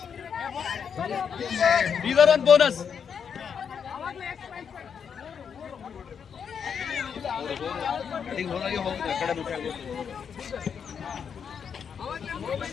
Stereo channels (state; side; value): quieter; right; 7.1 dB